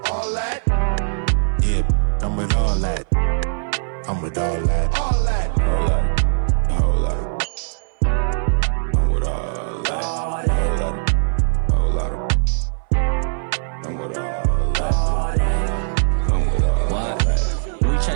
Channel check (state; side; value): silent; left; 61 dB below the other